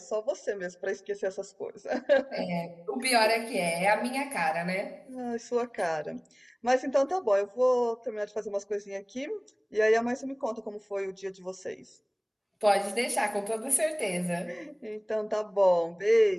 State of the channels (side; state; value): both; identical; correlation 1.00